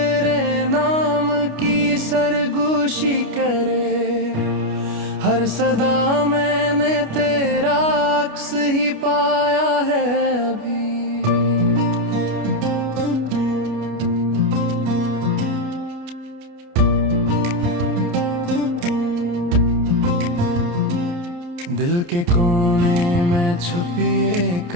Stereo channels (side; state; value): left; late; 29 ms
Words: नाम की सरगोशी करे, हर सदा मैंने तेरा अक्स ही पाया है अभी। दिल के कोने में छुपी एक